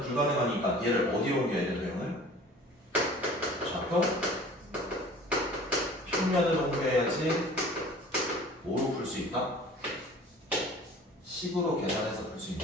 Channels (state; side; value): normal; both; correlation 0.46